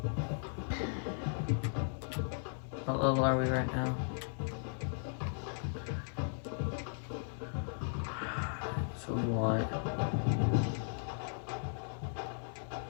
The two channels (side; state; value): right; silent; digital silence